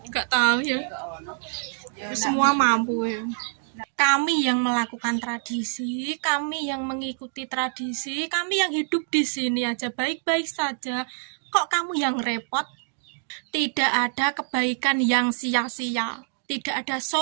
Enggak tahu ya. Semua mampu ya. Kami yang melakukan tradisi, kami yang mengikuti tradisi, kami yang hidup di sini aja baik-baik saja. Kok kamu yang repot? Tidak ada kebaikan yang sia-sia. Tidak ada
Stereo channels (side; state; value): left; silent; digital silence